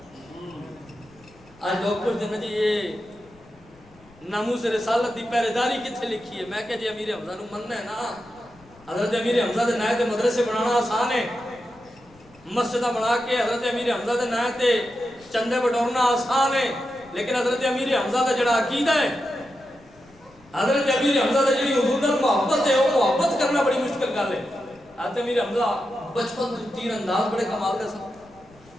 آج لوگ پوچھتے ہیں جی یہ ناموس رسالت کی پہرے داری کتنے لکھی ہے؟ میں کہ جی امیر حمزہ نو مننا ہے نا، حضرت امیر حمزہ دے نائے تے مدرسے بنانا آسان ہے، مسجدہ بنا کے حضرت امیر حمزہ دے نائے تے چندے بٹورنا آسان ہے، لیکن حضرت امیر حمزہ دا جڑا عقیدہ ہے، حضرت امیر حمزہ دا جڑی حضور نال محبت ہے، وہ محبت کرنا بڑی مشکل گل ہے۔ حضرت امیر حمزہ بچپن تو تیر انداز بڑے کمال دے سن،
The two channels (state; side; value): noise; left; rumble, 27 dB below the sound